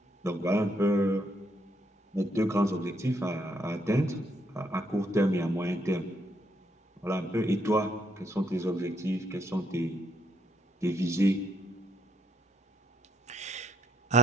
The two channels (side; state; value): both; normal; correlation 0.72